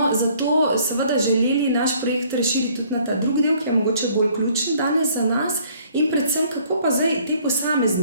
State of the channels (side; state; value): both; inverted; correlation -0.59